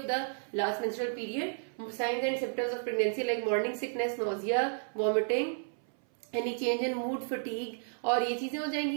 the last menstrual period, signs and symptoms of pregnancy like morning sickness, nausea, vomiting, any change in mood, fatigue, और ये चीजें हो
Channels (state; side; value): silent; left; 56 dB below the other